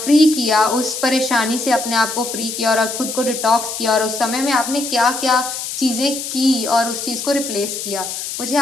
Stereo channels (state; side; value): noise; left; hiss, 6 dB below the sound